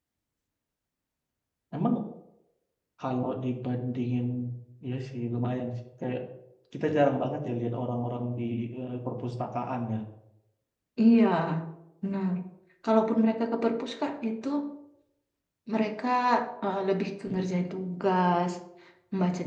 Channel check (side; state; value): both; identical; correlation 1.00